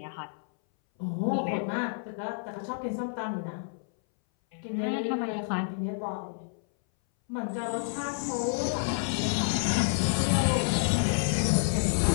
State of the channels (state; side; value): silent; right; 58 dB below the other